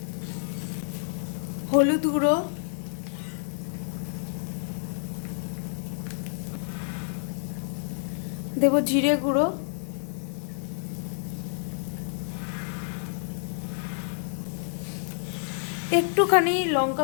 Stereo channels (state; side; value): silent; right; digital silence